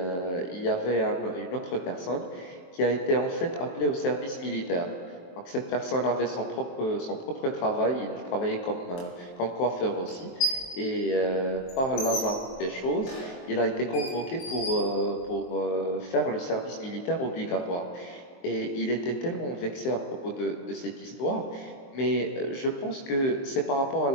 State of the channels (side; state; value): right; late; 23 ms